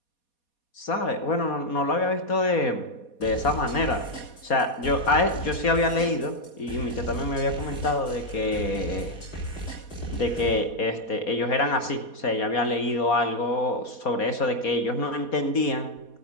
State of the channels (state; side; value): late; right; 4.2 ms